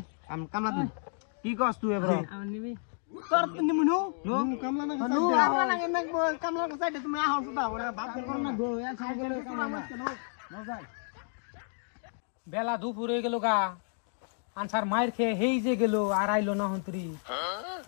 কামলা দিন কি কস তুই এবার আমার নিবি তোর নিমু নো কামলা না কামলা কো সাইডে তুমি আহো সুদা ওরা বাপ কর না গো এ সাইডে মজা বেলা দুপুর হয়ে গেল গা আনসার মায়ের খেয়ে হেই যে গেল আর আইলো না হন্তরি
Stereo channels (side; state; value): right; silent; 57 dB below the other